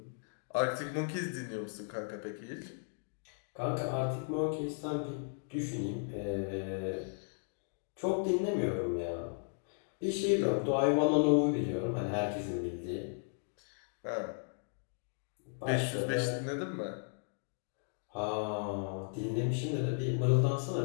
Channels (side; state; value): right; silent; digital silence